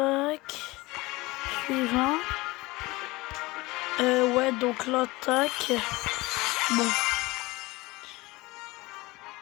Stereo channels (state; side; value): quieter; right; 21.6 dB